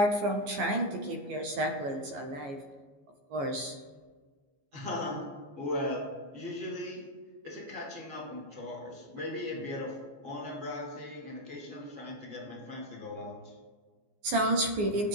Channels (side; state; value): left; late; 14 ms